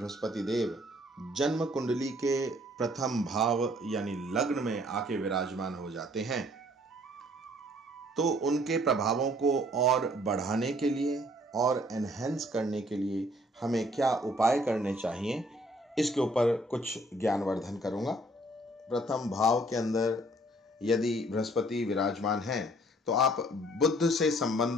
देव जन्म कुंडली के प्रथम भाव यानी लग्न में आके विराजमान हो जाते हैं तो उनके प्रभावों को और बढ़ाने के लिए और एनहेंस करने के लिए हमें क्या उपाय करने चाहिए, इसके ऊपर कुछ ज्ञानवर्धन करूंगा। प्रथम भाव के अंदर यदि बृहस्पति विराजमान हैं तो आप बुध से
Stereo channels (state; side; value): normal; both; correlation 0.60